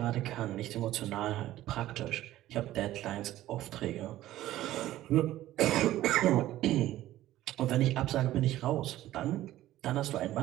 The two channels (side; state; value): left; quieter; 14.6 dB